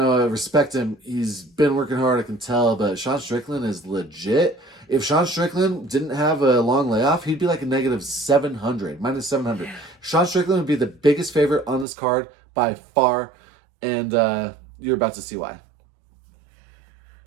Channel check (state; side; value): drops out; left; at 11.9 s